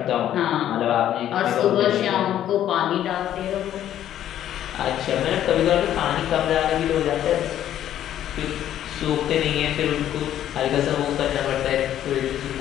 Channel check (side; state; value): right; quieter; 11.4 dB